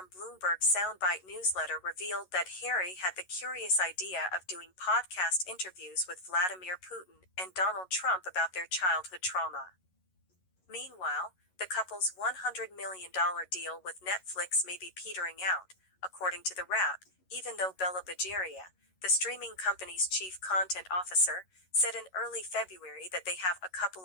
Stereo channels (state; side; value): late; right; 11 ms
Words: Bloomberg's Soundbite newsletter revealed that Harry had the curious idea of doing podcast interviews with Vladimir Putin and Donald Trump about their childhood trauma. Meanwhile, the couple's $100 million deal with Netflix may be petering out, according to The Wrap, even though Bella Bajaria, the streaming company's chief content officer, said in early February that they have a